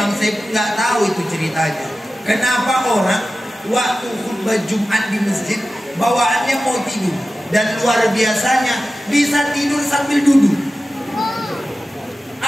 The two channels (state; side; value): normal; both; correlation 0.94